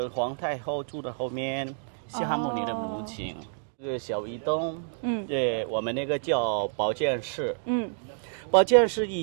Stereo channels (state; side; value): silent; left; digital silence